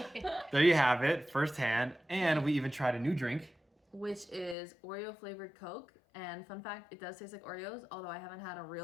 There you have it, firsthand. And we even tried a new drink. Which is Oreo flavored Coke. And fun fact, it does taste like Oreos, although I haven't had a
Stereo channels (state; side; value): drops out; right; at 4.5 s